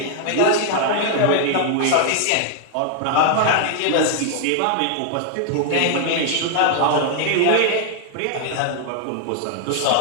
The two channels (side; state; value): both; different; correlation 0.00